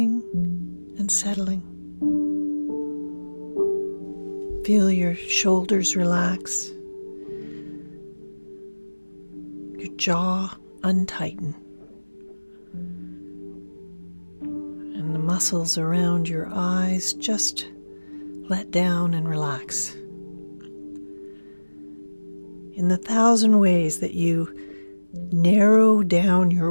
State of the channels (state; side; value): inverted; both; correlation -1.00